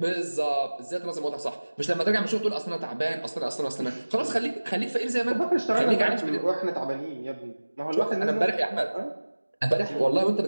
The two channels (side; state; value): both; inverted; correlation -1.00